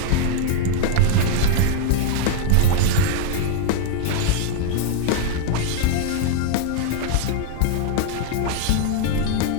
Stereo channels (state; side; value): different; both; correlation 0.00